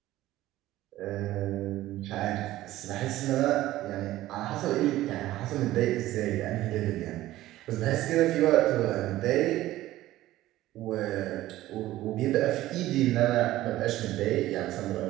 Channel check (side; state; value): left; quieter; 15.5 dB